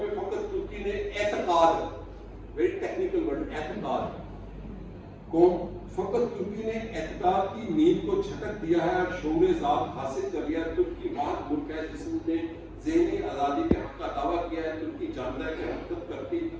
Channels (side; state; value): both; identical; correlation 1.00